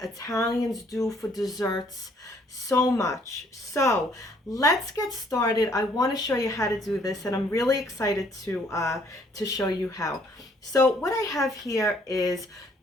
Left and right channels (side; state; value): both; normal; correlation 0.63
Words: Italians do for desserts so much. So let's get started. I want to show you how to do this, and I'm really excited to show you how. So what I have here is